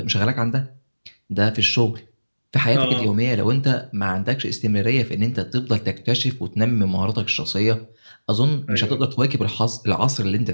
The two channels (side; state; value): both; inverted; correlation -1.00